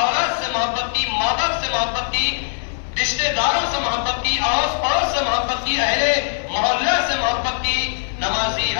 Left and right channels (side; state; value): right; silent; 65 dB below the other